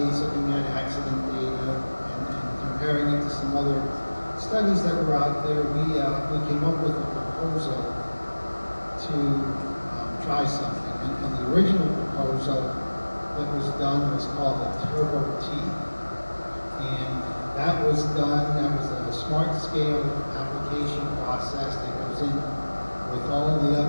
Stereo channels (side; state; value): both; inverted; correlation -1.00